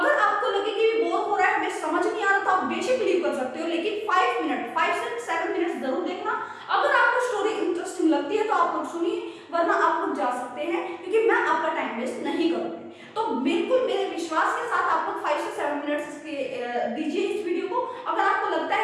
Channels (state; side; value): identical; both; correlation 1.00